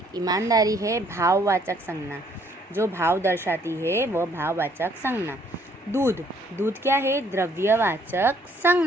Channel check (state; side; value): normal; both; correlation 0.64